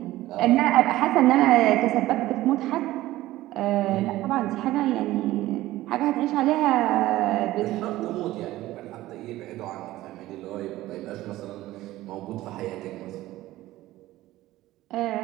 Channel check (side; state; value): left; quieter; 16.3 dB